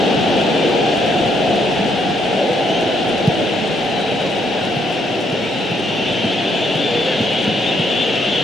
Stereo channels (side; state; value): both; normal; correlation 0.72